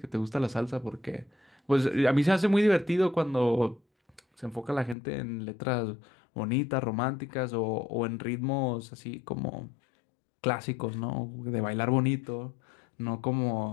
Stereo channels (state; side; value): drops out; right; at 5.0 s